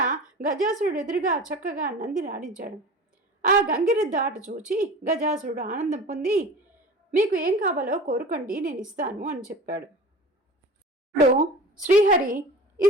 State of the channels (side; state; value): both; normal; correlation 0.36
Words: గజాసురుడు ఎదురుగా చక్కగా నందిని ఆడించాడు. ఆ గంగిరెద్దు ఆట చూచి గజాసురుడు ఆనందం పొంది, మీకు ఏం కావాలో కోరుకోండి, నేను ఇస్తాను అని చెప్పాడు. ఇప్పుడు శ్రీహరి,